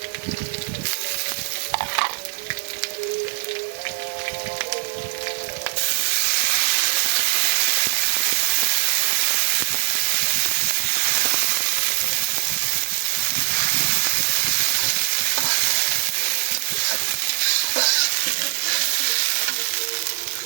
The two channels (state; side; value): silent; left; digital silence